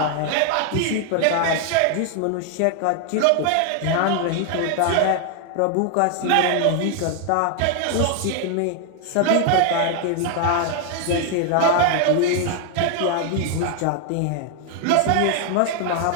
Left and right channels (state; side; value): different; both; correlation 0.00